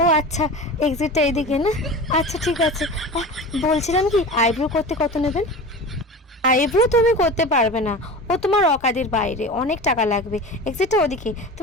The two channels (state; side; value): normal; both; correlation 0.32